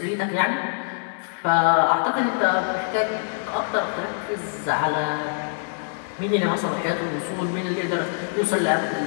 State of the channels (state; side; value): silent; right; 62 dB below the other